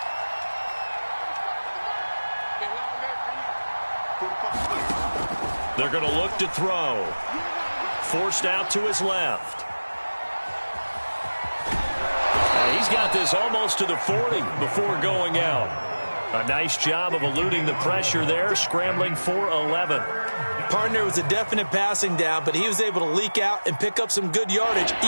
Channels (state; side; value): inverted; both; correlation -1.00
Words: They're going to look to throw. Forced out to his left. He's got this almost to the 40 before going out. A nice job of eluding the pressure there, scrambling for 11. Partner was a definite passing down, but he was able to leak out and pick up some good yardage,